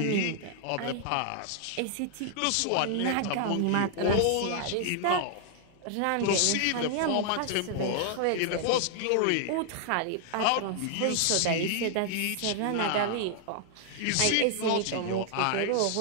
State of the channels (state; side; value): different; both; correlation 0.00